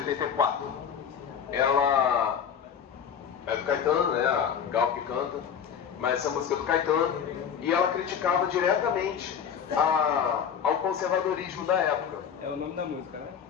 Ela é do Caetano, né? A Gal que canta, mas essa música é do Caetano, e ela criticava diretamente ao conservadorismo da época. É o nome da música, né?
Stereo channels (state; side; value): quieter; right; 7.8 dB